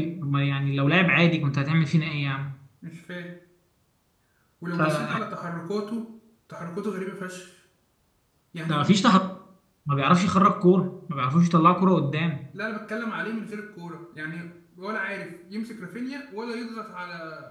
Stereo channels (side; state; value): both; identical; correlation 1.00